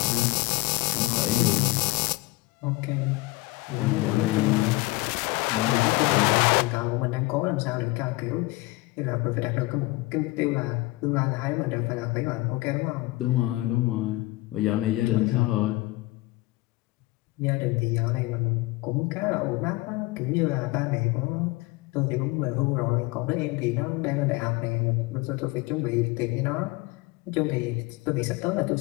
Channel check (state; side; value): quieter; right; 21.1 dB